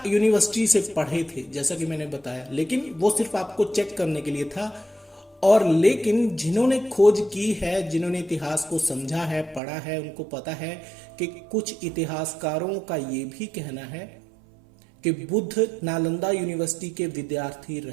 यूनिवर्सिटी से पढ़े थे, जैसा कि मैंने बताया, लेकिन वो सिर्फ आपको चेक करने के लिए था। और लेकिन जिन्होंने खोज की है, जिन्होंने इतिहास को समझा है, पढ़ा है, उनको पता है कि कुछ इतिहासकारों का ये भी कहना है कि बुद्ध नालंदा यूनिवर्सिटी के विद्यार्थी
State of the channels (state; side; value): drops out; left; at 9.6 s